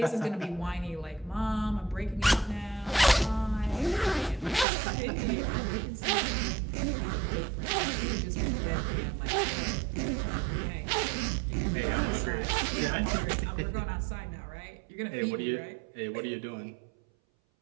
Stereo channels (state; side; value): drops out; left; at 4.7 s